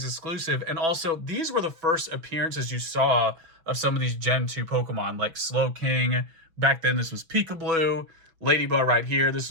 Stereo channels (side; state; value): left; late; 6.1 ms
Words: exclusive. And also, these were the first appearances you saw of some of these Gen 2 Pokemon, like Slowking. Back then, this was Pikablu. Ladybug right here. This